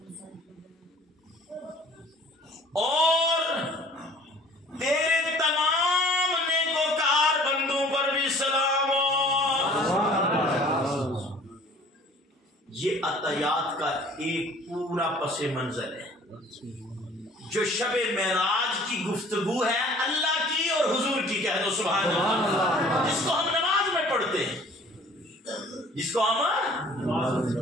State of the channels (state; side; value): normal; both; correlation 0.51